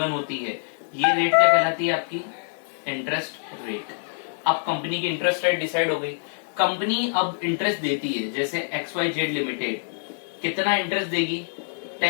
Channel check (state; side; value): silent; right; digital silence